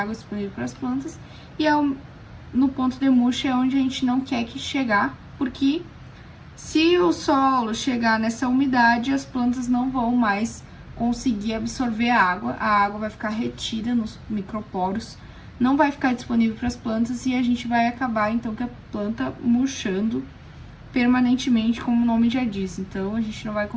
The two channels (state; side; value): identical; both; correlation 1.00